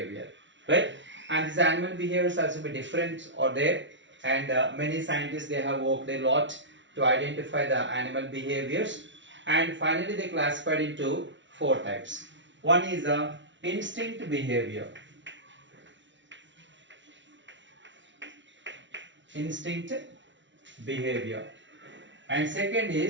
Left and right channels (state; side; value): late; left; 0.54 ms